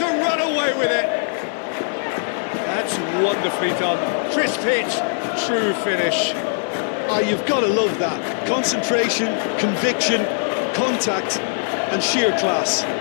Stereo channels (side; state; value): right; silent; digital silence